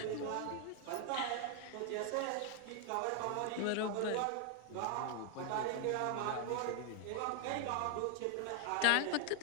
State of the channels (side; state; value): both; different; correlation 0.00